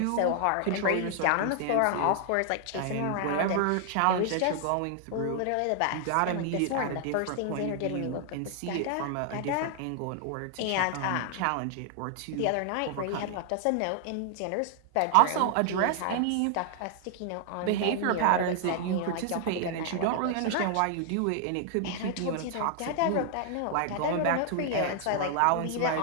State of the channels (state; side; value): different; both; correlation 0.00